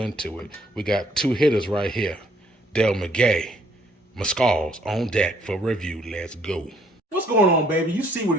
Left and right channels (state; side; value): normal; both; correlation 0.65